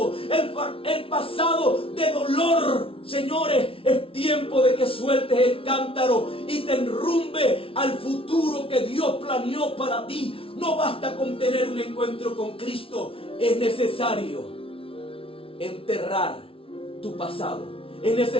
el pasado de dolor. Señores, es tiempo de que sueltes el cántaro y te enrumbe al futuro que Dios planeó para ti. No basta con tener un encuentro con Cristo. Es necesario enterrar tu pasado. Es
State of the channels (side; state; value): right; late; 0.26 ms